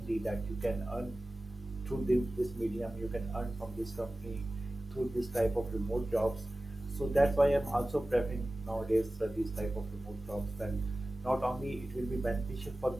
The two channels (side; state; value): both; normal; correlation 0.96